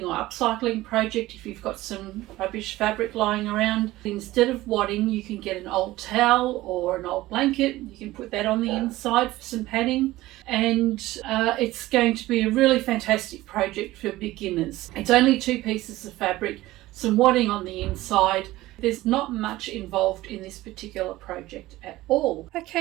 or upcycling project if you've got some rubbish fabric lying around. Instead of wadding, you can get an old towel or an old blanket. You can put that on the inside for some padding, and it's going to be a really fantastic project for beginners. It's only 2 pieces of fabric, some wadding on the inside. There's not much involved in this particular project at all.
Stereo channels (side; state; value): left; quieter; 17.3 dB